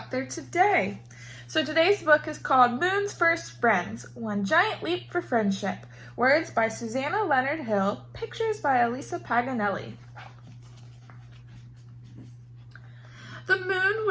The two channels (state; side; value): identical; both; correlation 1.00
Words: there today. So today's book is called Moon's First Friends, One Giant Leap for Friendship. Words by Susanna Leonard Hill, pictures by Elisa Paganelli. The moon